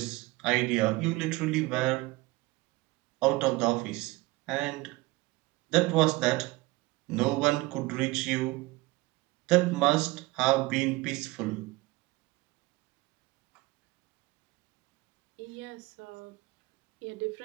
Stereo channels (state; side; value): quieter; left; 21.4 dB